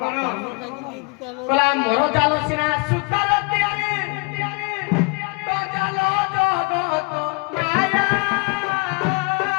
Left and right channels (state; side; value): quieter; right; 30.0 dB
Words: କଣ? କଲା ମୋର ଜାଲ ସିନା ସୁତାର ତିଆରି, ତ ଜାଲ ଜଗତ ମାୟା।